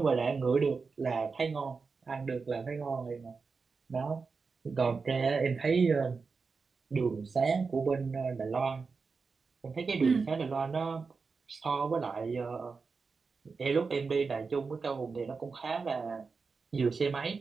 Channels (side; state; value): left; quieter; 4.7 dB